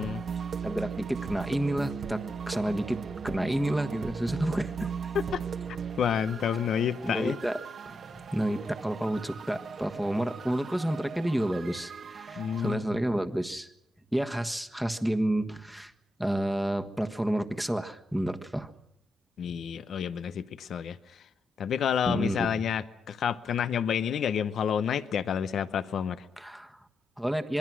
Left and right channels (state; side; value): normal; both; correlation 0.85